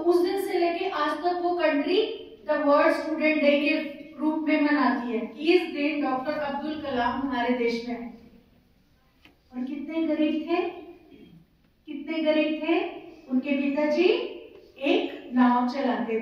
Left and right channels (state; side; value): identical; both; correlation 1.00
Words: दिन से लेके आज तक वो country the world student day के रूप में मनाती है। इस दिन डॉक्टर अब्दुल कलाम हमारे देश में आए। और कितने गरीब थे, कितने गरीब थे। उनके पिताजी एक नाव चलाते